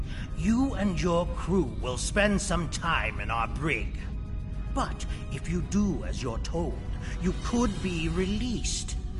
You and your crew will spend some time in our brig. But if you do as you're told, you could be released.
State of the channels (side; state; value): both; identical; correlation 1.00